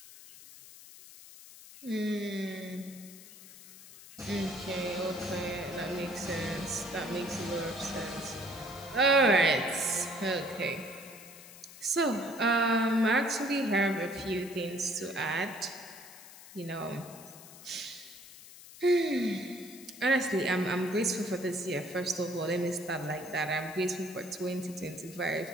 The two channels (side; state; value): left; noise; hiss, 18 dB below the sound